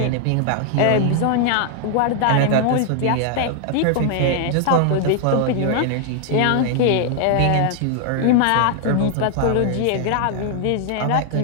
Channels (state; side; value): different; both; correlation 0.00